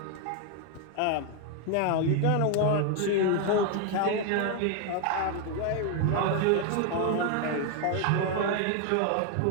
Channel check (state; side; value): different; both; correlation 0.01